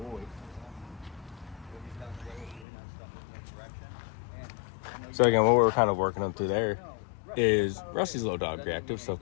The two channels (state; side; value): drops out; right; at 2.7 s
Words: So again, what we're kind of working up through there is Rusty's a little dog reactive, so of